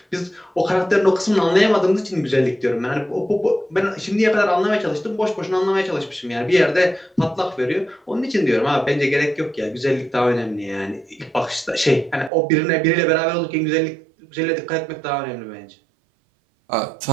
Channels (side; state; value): left; drops out; at 12.3 s